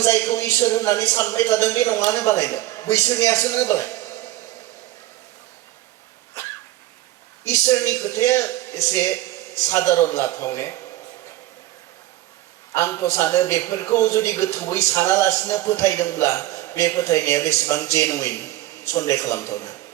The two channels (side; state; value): left; quieter; 15.5 dB